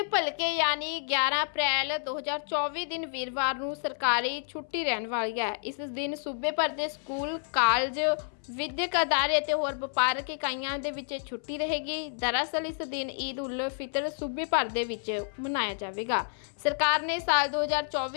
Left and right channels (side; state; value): right; silent; 58 dB below the other